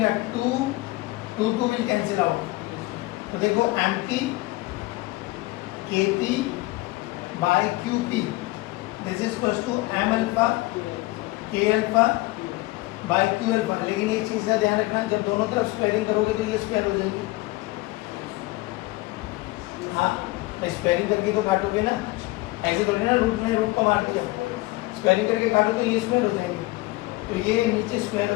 2 विल कैंसिल आउट. तो देखो empty kp by qp this is equals to m alpha k alpha by q alpha. लेकिन एक चीज का ध्यान रखना, जब दोनों तरफ स्क्वायरिंग करोगे तो ये स्क्वायर हो जाएगी. हाँ, स्क्वायरिंग करके तो काटोगे ना, ऐसे करोगे ना, रूट को मार दिया, स्क्वायरिंग करके काटो तो ये स्क्वायर हो जाएगी. तो ये नीचे स्क्वायर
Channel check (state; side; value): quieter; right; 20.5 dB